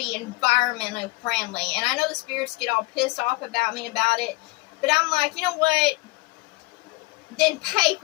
environmentally friendly. And I know the spirits get all pissed off about me about it, but I'm like, you know what? Then pay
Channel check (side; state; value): right; quieter; 23.7 dB